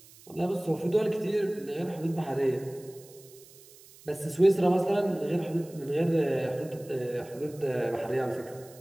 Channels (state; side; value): noise; right; hiss, 23 dB below the sound